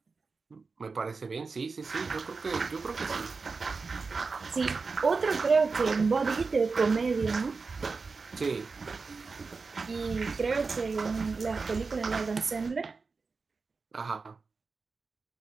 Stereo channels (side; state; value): left; quieter; 4.4 dB